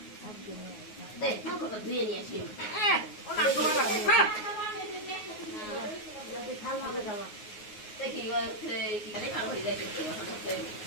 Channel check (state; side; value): late; right; 9.5 ms